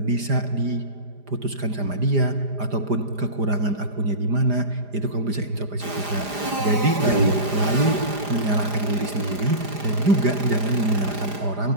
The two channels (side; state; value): left; late; 4.9 ms